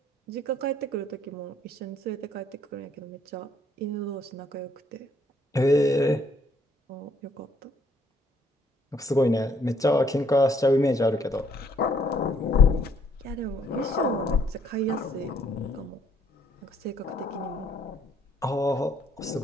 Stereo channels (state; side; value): normal; both; correlation 0.66